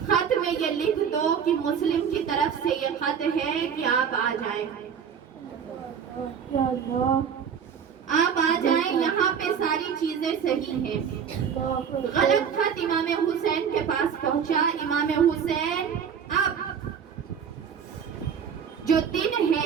में ये लिख दो कि मुस्लिम की तरफ से ये खत है कि आप आ जाएं, आप आ जाएं, यहाँ पे सारी चीजें सही हैं। गलत खत इमाम हुसैन के पास पहुंचा। इमाम हुसैन अब जो दिन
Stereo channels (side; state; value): left; quieter; 7.4 dB